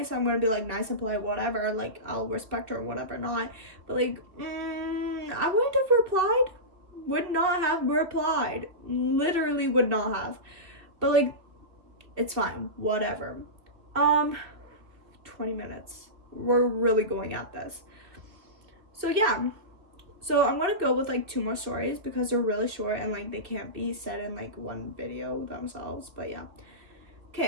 I'm going to be, like, nice and polite, whatever. Like, I'll respect her, whatever, not. But, like, I wouldn't have replied. Would not have replied. Literally would not have. But, like, it's fine. Whatever. 20 minutes. We're really going at this. So, yeah. So, I'm going to go with, like, 2 more stories because they're really short and, like, they can't be said in, like, one video themselves. But, yeah.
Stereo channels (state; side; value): late; left; 2.4 ms